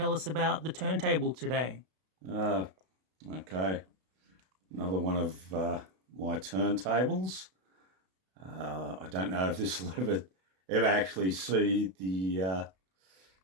us about the turntable today? Okay, another one of my turntables. I don't know if this will ever actually see the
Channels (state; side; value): late; left; 32 ms